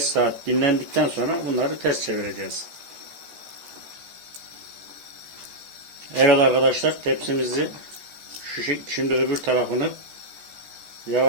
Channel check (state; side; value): late; left; 14 ms